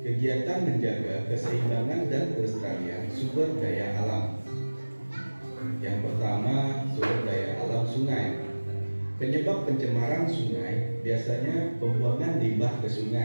kegiatan menjaga keseimbangan dan kelestarian sumber daya alam. Yang pertama, sumber daya alam sungai. Penyebab pencemaran sungai biasanya pembuangan limbah ke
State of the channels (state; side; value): inverted; both; correlation -1.00